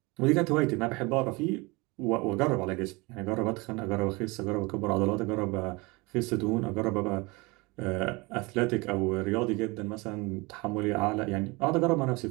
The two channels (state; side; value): quieter; left; 25.2 dB